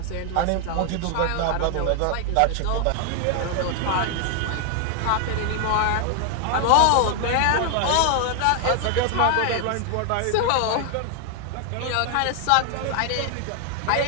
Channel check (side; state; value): both; different; correlation 0.00